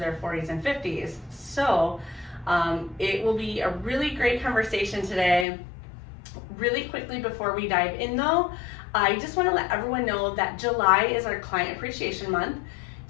40s and 50s. So it will be a really great conversation today. Really quickly before we dive in though, I just want to let everyone know that July is our Client Appreciation Month.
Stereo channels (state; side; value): drops out; right; at 5.5 s